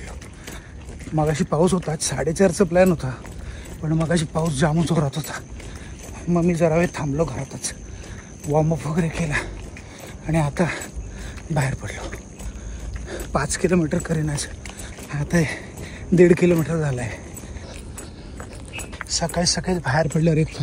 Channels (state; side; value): identical; both; correlation 1.00